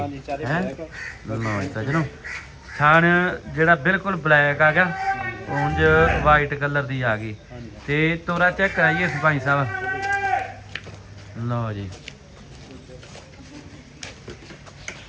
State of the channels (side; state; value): both; identical; correlation 1.00